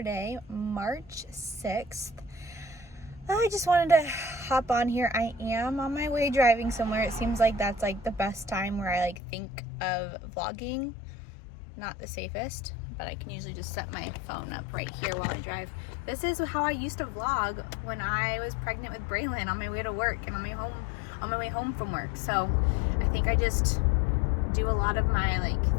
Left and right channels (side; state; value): right; drops out; at 9.2 s